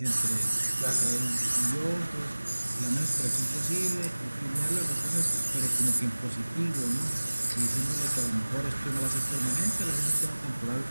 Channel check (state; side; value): inverted; both; correlation -1.00